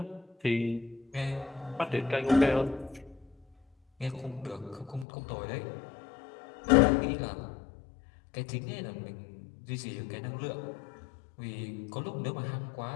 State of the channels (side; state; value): right; drops out; at 5.1 s